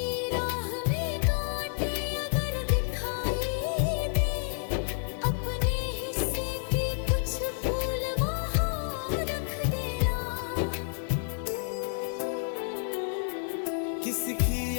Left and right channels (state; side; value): silent; right; digital silence